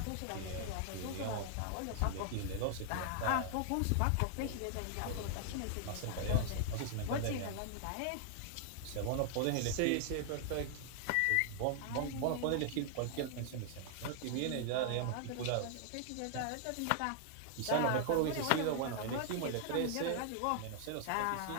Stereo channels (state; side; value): different; both; correlation 0.00